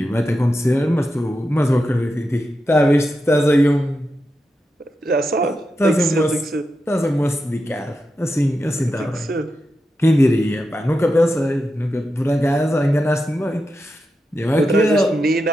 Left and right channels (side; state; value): both; normal; correlation 0.88